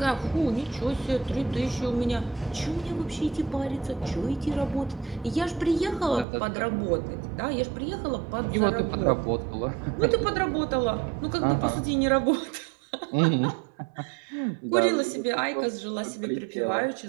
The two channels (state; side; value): drops out; left; at 6.2 s